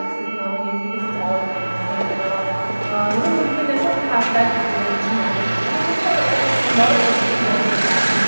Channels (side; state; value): both; inverted; correlation -1.00